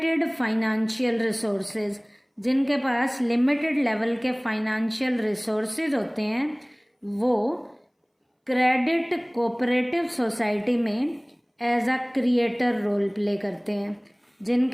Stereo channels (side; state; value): both; identical; correlation 1.00